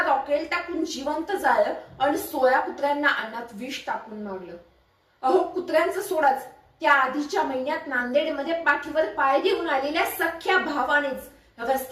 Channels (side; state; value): both; identical; correlation 1.00